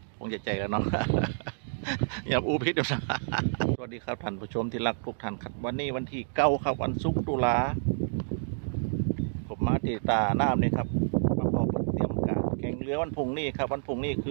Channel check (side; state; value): left; silent; digital silence